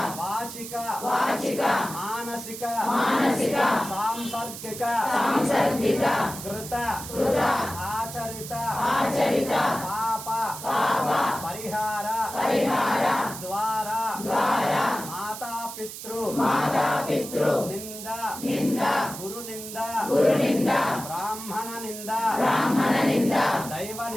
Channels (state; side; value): noise; right; hiss, 10 dB below the sound